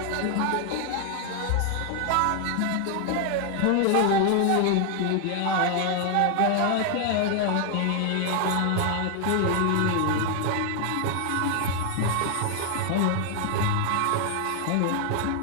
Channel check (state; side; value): different; both; correlation 0.00